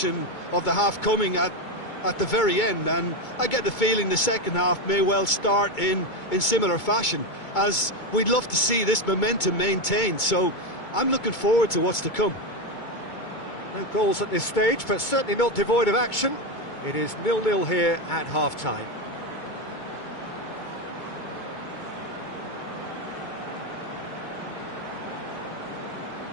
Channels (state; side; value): late; right; 2.2 ms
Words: of the half coming at the very end, and I get the feeling the second half may well start in similar fashion, as we'd love to see this momentum maintained, so I'm looking forward to what's to come. No goals at this stage, but certainly not devoid of action. It is 0-0 here at half-time.